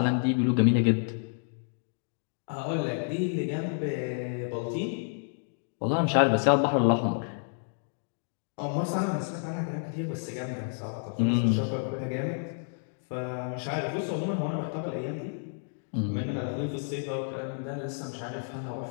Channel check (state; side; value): silent; right; digital silence